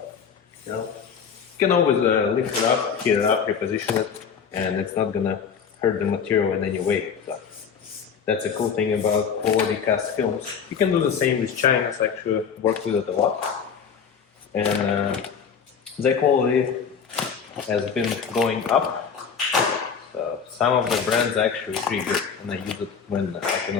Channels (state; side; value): quieter; right; 6.8 dB